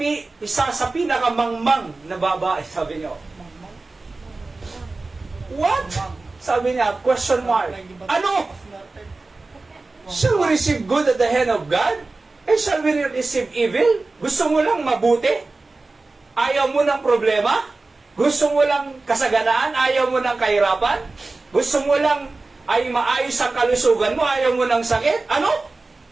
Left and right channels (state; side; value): quieter; left; 3.5 dB